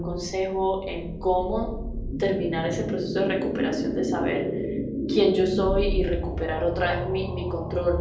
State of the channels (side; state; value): both; identical; correlation 1.00